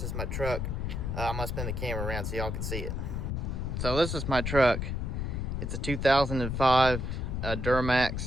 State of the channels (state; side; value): noise; left; rumble, 2 dB below the sound